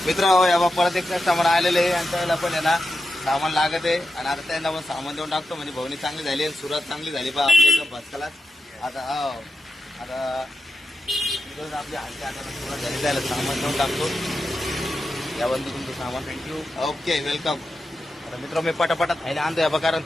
मित्र. या परत एक कस्टमर आलेले आहे आणि त्याला पण आहे ना सामान लागत आहे. आणि आता त्यांना पण सामान देऊन टाकतो म्हणजे भवनी चांगली झाली आणि सुरुवात चांगली झाली पहा आपल्या एकदम भस्कला. आता आता आपली हालची आता सुरुवात झाली त्याला सामान देऊन टाकतो. या बंधू तुमचं सामान. थँक्यू. Okay welcome. आता मित्र मी पटापटा थैल्या आणतोय बा, कारण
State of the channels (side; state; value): both; normal; correlation 0.89